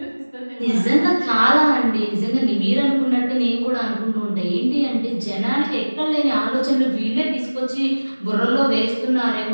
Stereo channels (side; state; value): both; inverted; correlation -1.00